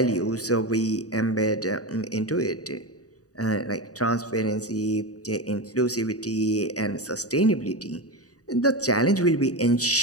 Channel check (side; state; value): right; late; 0.67 ms